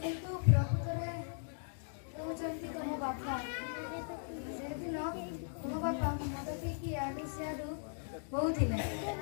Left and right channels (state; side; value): silent; right; digital silence